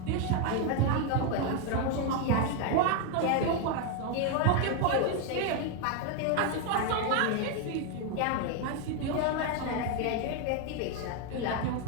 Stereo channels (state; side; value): different; both; correlation 0.01